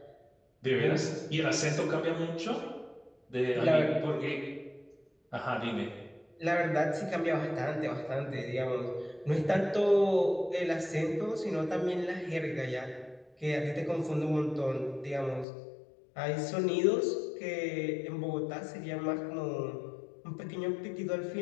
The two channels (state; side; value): drops out; right; at 15.5 s